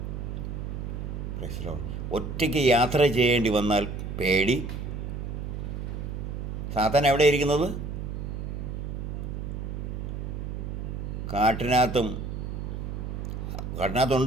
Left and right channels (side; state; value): right; noise; hum, 5 dB below the sound